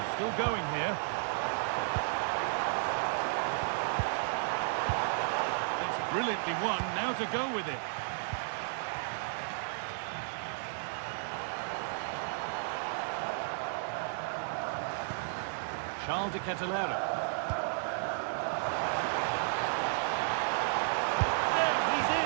Still going here. That's brilliantly won, now to go with it. Charles de Kettelera. There, he's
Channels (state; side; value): silent; left; digital silence